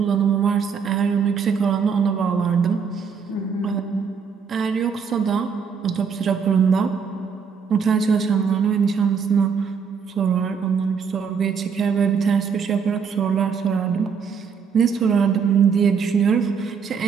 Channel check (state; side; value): quieter; left; 6.2 dB